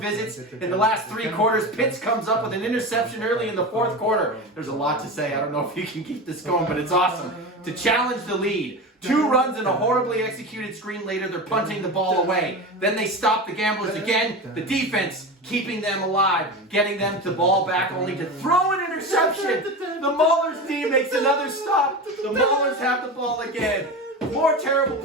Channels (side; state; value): both; normal; correlation 0.25